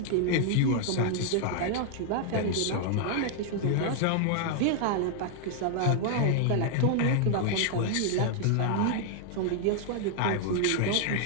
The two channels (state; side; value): different; both; correlation 0.00